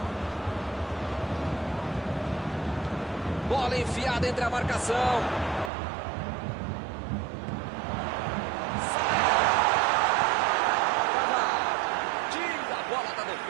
Bola enfiada entre a marcação. Tira a bola da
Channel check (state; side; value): drops out; left; at 5.7 s